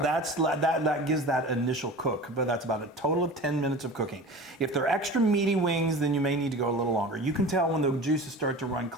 that gives that initial cook, but that's about a total of 10 minutes of cooking. If they're extra meaty wings, then you may need to go a little longer. You can tell when the juices start to run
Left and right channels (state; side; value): normal; both; correlation 0.36